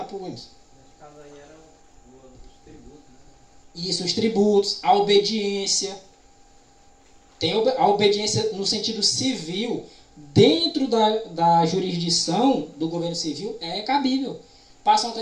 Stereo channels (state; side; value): identical; both; correlation 1.00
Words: para o Emerson. Nesse caso aí era os tributos, né? Isso, os tributos, a obediência. Tem a obediência no sentido civil, dentro da jurisdição do governo civil, é cabível. Passa a